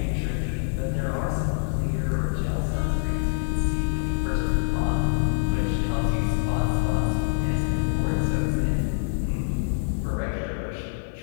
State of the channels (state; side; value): silent; right; 61 dB below the other